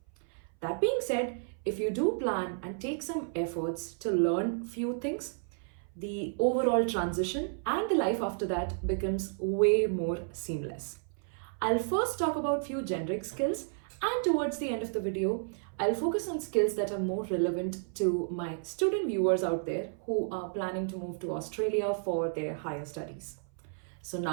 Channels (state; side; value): silent; left; 56 dB below the other